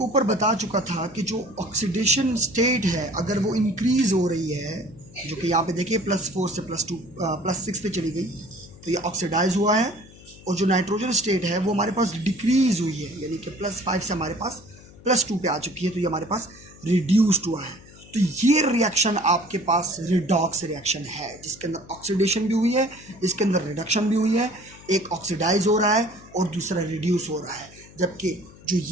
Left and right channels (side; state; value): left; noise; hum, 21 dB below the sound